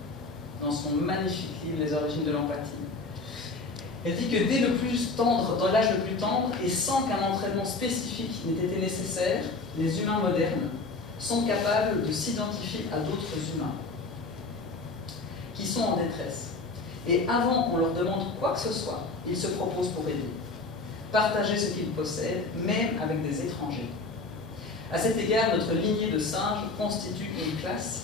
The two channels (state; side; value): quieter; right; 3.6 dB